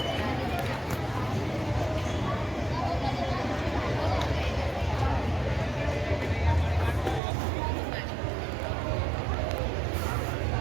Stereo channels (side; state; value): left; drops out; at 7.2 s